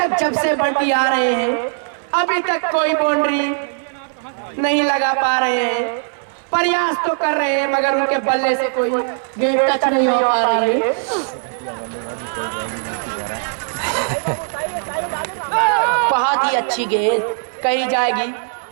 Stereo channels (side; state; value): left; silent; digital silence